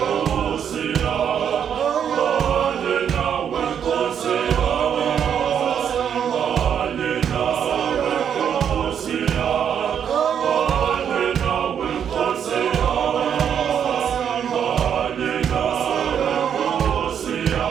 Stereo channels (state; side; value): quieter; left; 8.4 dB